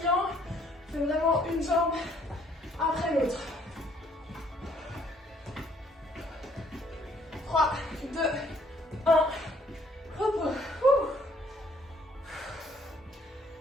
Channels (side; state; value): both; normal; correlation 0.64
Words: fais vraiment une jambe après l'autre. 3, 2, 1. Repos.